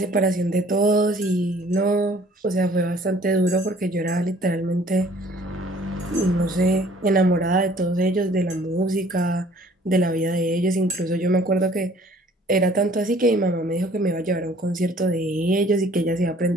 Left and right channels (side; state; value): both; normal; correlation 0.56